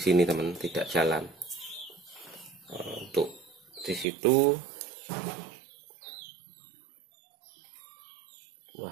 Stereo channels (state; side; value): drops out; left; at 4.0 s